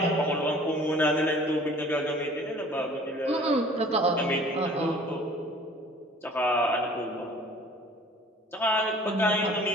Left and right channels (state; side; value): normal; both; correlation 0.50